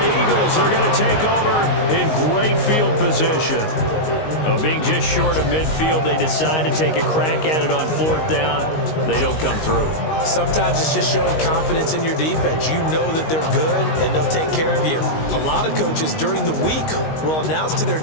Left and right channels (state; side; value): late; right; 19 ms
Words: Eagles are going to take over in great field position. Being just short of midfield, they decide to take a crack at it on 4th down. They don't come through. Sometimes it's just showing confidence in your defense. You know that they're good, and they'll take care of you. A lot of coaches during the week will announce to their